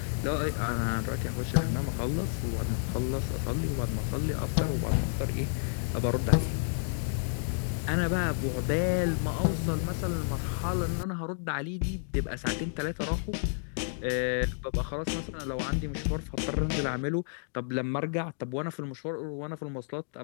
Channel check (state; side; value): silent; right; digital silence